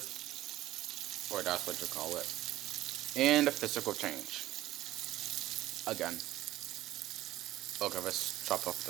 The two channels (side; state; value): left; quieter; 15.2 dB